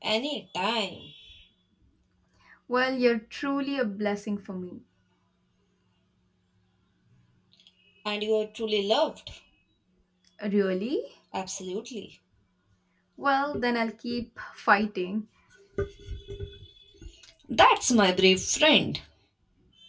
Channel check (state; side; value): identical; both; correlation 1.00